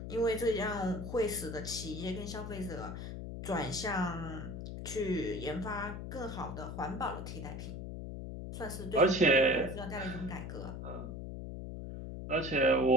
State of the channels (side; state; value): left; noise; hum, 7 dB below the sound